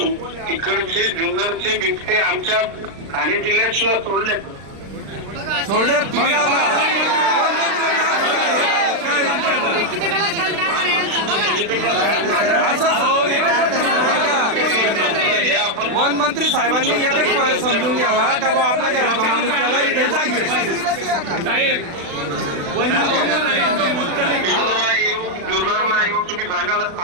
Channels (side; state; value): left; late; 36 ms